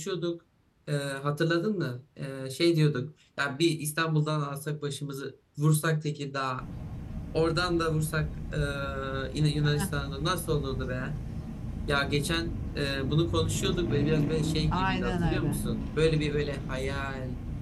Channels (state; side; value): identical; both; correlation 1.00